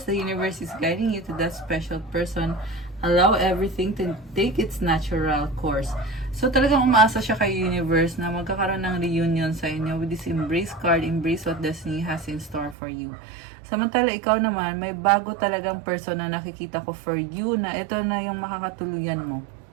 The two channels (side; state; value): left; drops out; at 12.8 s